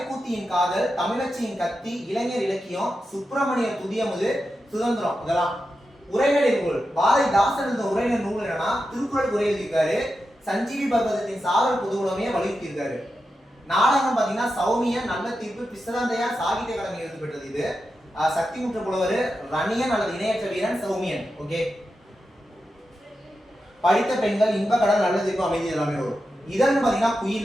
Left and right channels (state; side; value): normal; both; correlation 0.89